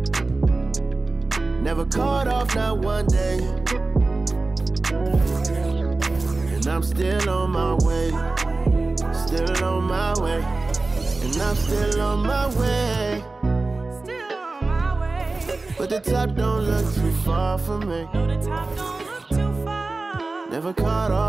Never caught off, not one day. And I'm still on my way. Still on my way. And I'm still on my way. Still on my way. But the top don't look too far from me. No, the top don't look too far. Never caught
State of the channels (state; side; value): quieter; left; 3.4 dB